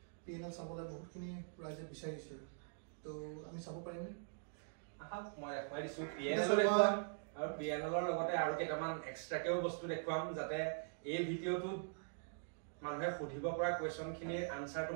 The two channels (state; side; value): silent; left; digital silence